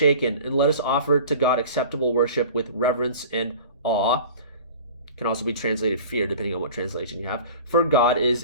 and let us offer to God acceptable worship with reverence and awe." Can also be translated fear, depending on what translation you have. "For God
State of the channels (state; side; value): inverted; both; correlation -0.41